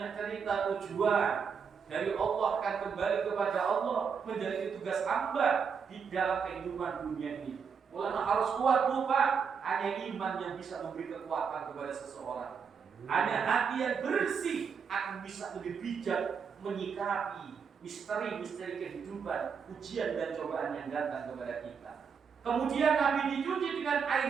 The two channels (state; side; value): quieter; left; 6.3 dB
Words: cerita tujuan. Dari Allah akan kembali kepada Allah, menjadi tugas hamba di dalam kehidupan dunia ini. Mulanya harus kuat, Pak. Hanya iman yang bisa memberi kekuatan kepada seseorang. Hanya hati yang bersih akan bisa lebih bijak menyikapi misteri-misteri kehidupan, ujian dan cobaan yang datang kepada kita. Kemudian Nabi dicuci dengan air